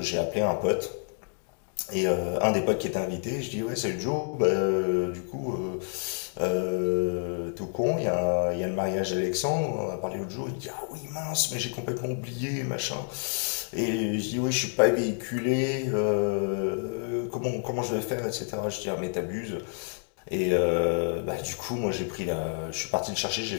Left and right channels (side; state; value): right; silent; 59 dB below the other